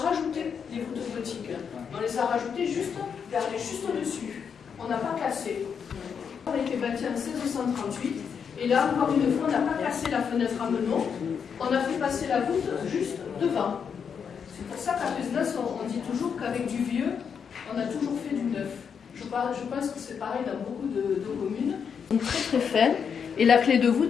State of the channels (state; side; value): quieter; right; 6.9 dB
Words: les voûtes gothiques. On les a rajoutées juste au-dessus. On n'a pas cassé. On a été bâti en 1638. Et là, encore une fois, on n'a pas cassé la fenêtre à meneaux. On a fait passer la voûte juste devant. C'est pour ça qu'à Pézenas, on dit toujours qu'avec du vieux, on a toujours fait du neuf. Je pense que c'est pareil dans beaucoup de communes. Donc très très fin. Et la clé de